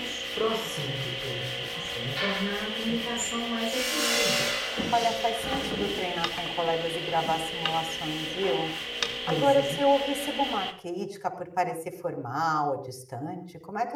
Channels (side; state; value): both; identical; correlation 1.00